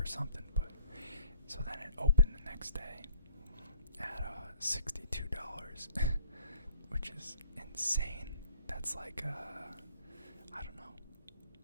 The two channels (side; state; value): both; inverted; correlation -0.57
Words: something, but so then it opened the next day at $62, which is insane. That's like I don't know,